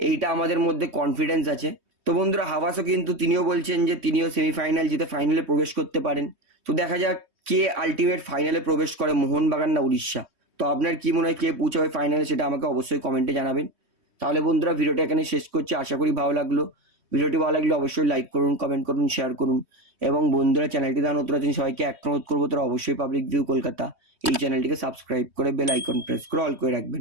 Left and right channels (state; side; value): late; left; 3.2 ms